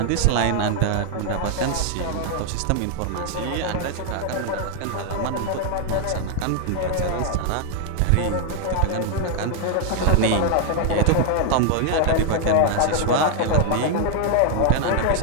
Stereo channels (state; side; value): different; both; correlation 0.00